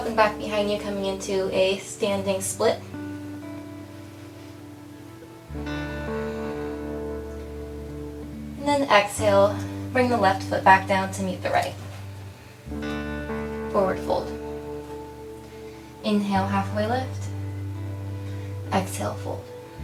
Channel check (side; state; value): both; identical; correlation 1.00